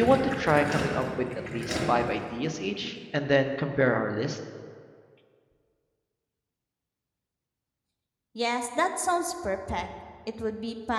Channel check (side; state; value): both; identical; correlation 1.00